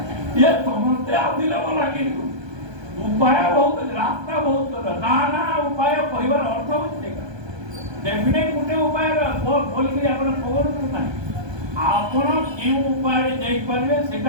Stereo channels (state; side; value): late; left; 1.2 ms